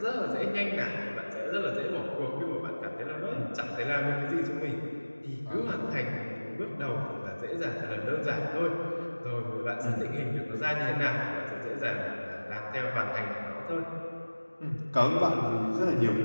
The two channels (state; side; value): inverted; both; correlation -1.00